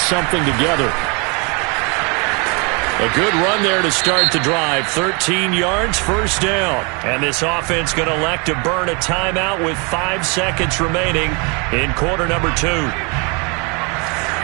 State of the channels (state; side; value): quieter; left; 31.9 dB